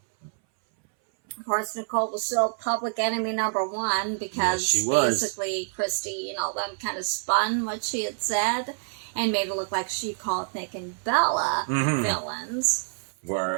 Of course, Nicole was still public enemy number one because basically Christy and all them kind of spun what she had said and made it look like she called Nick and Bella villains.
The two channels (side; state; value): left; silent; 60 dB below the other